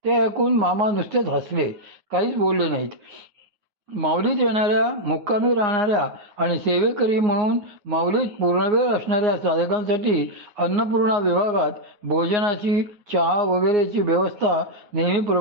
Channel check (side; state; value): left; late; 9.7 ms